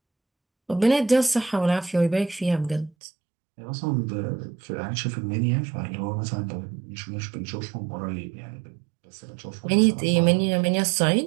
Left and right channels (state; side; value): drops out; left; at 2.9 s